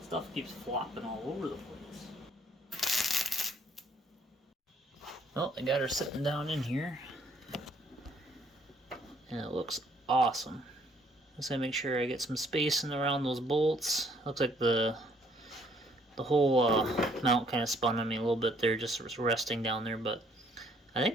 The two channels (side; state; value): both; normal; correlation 0.64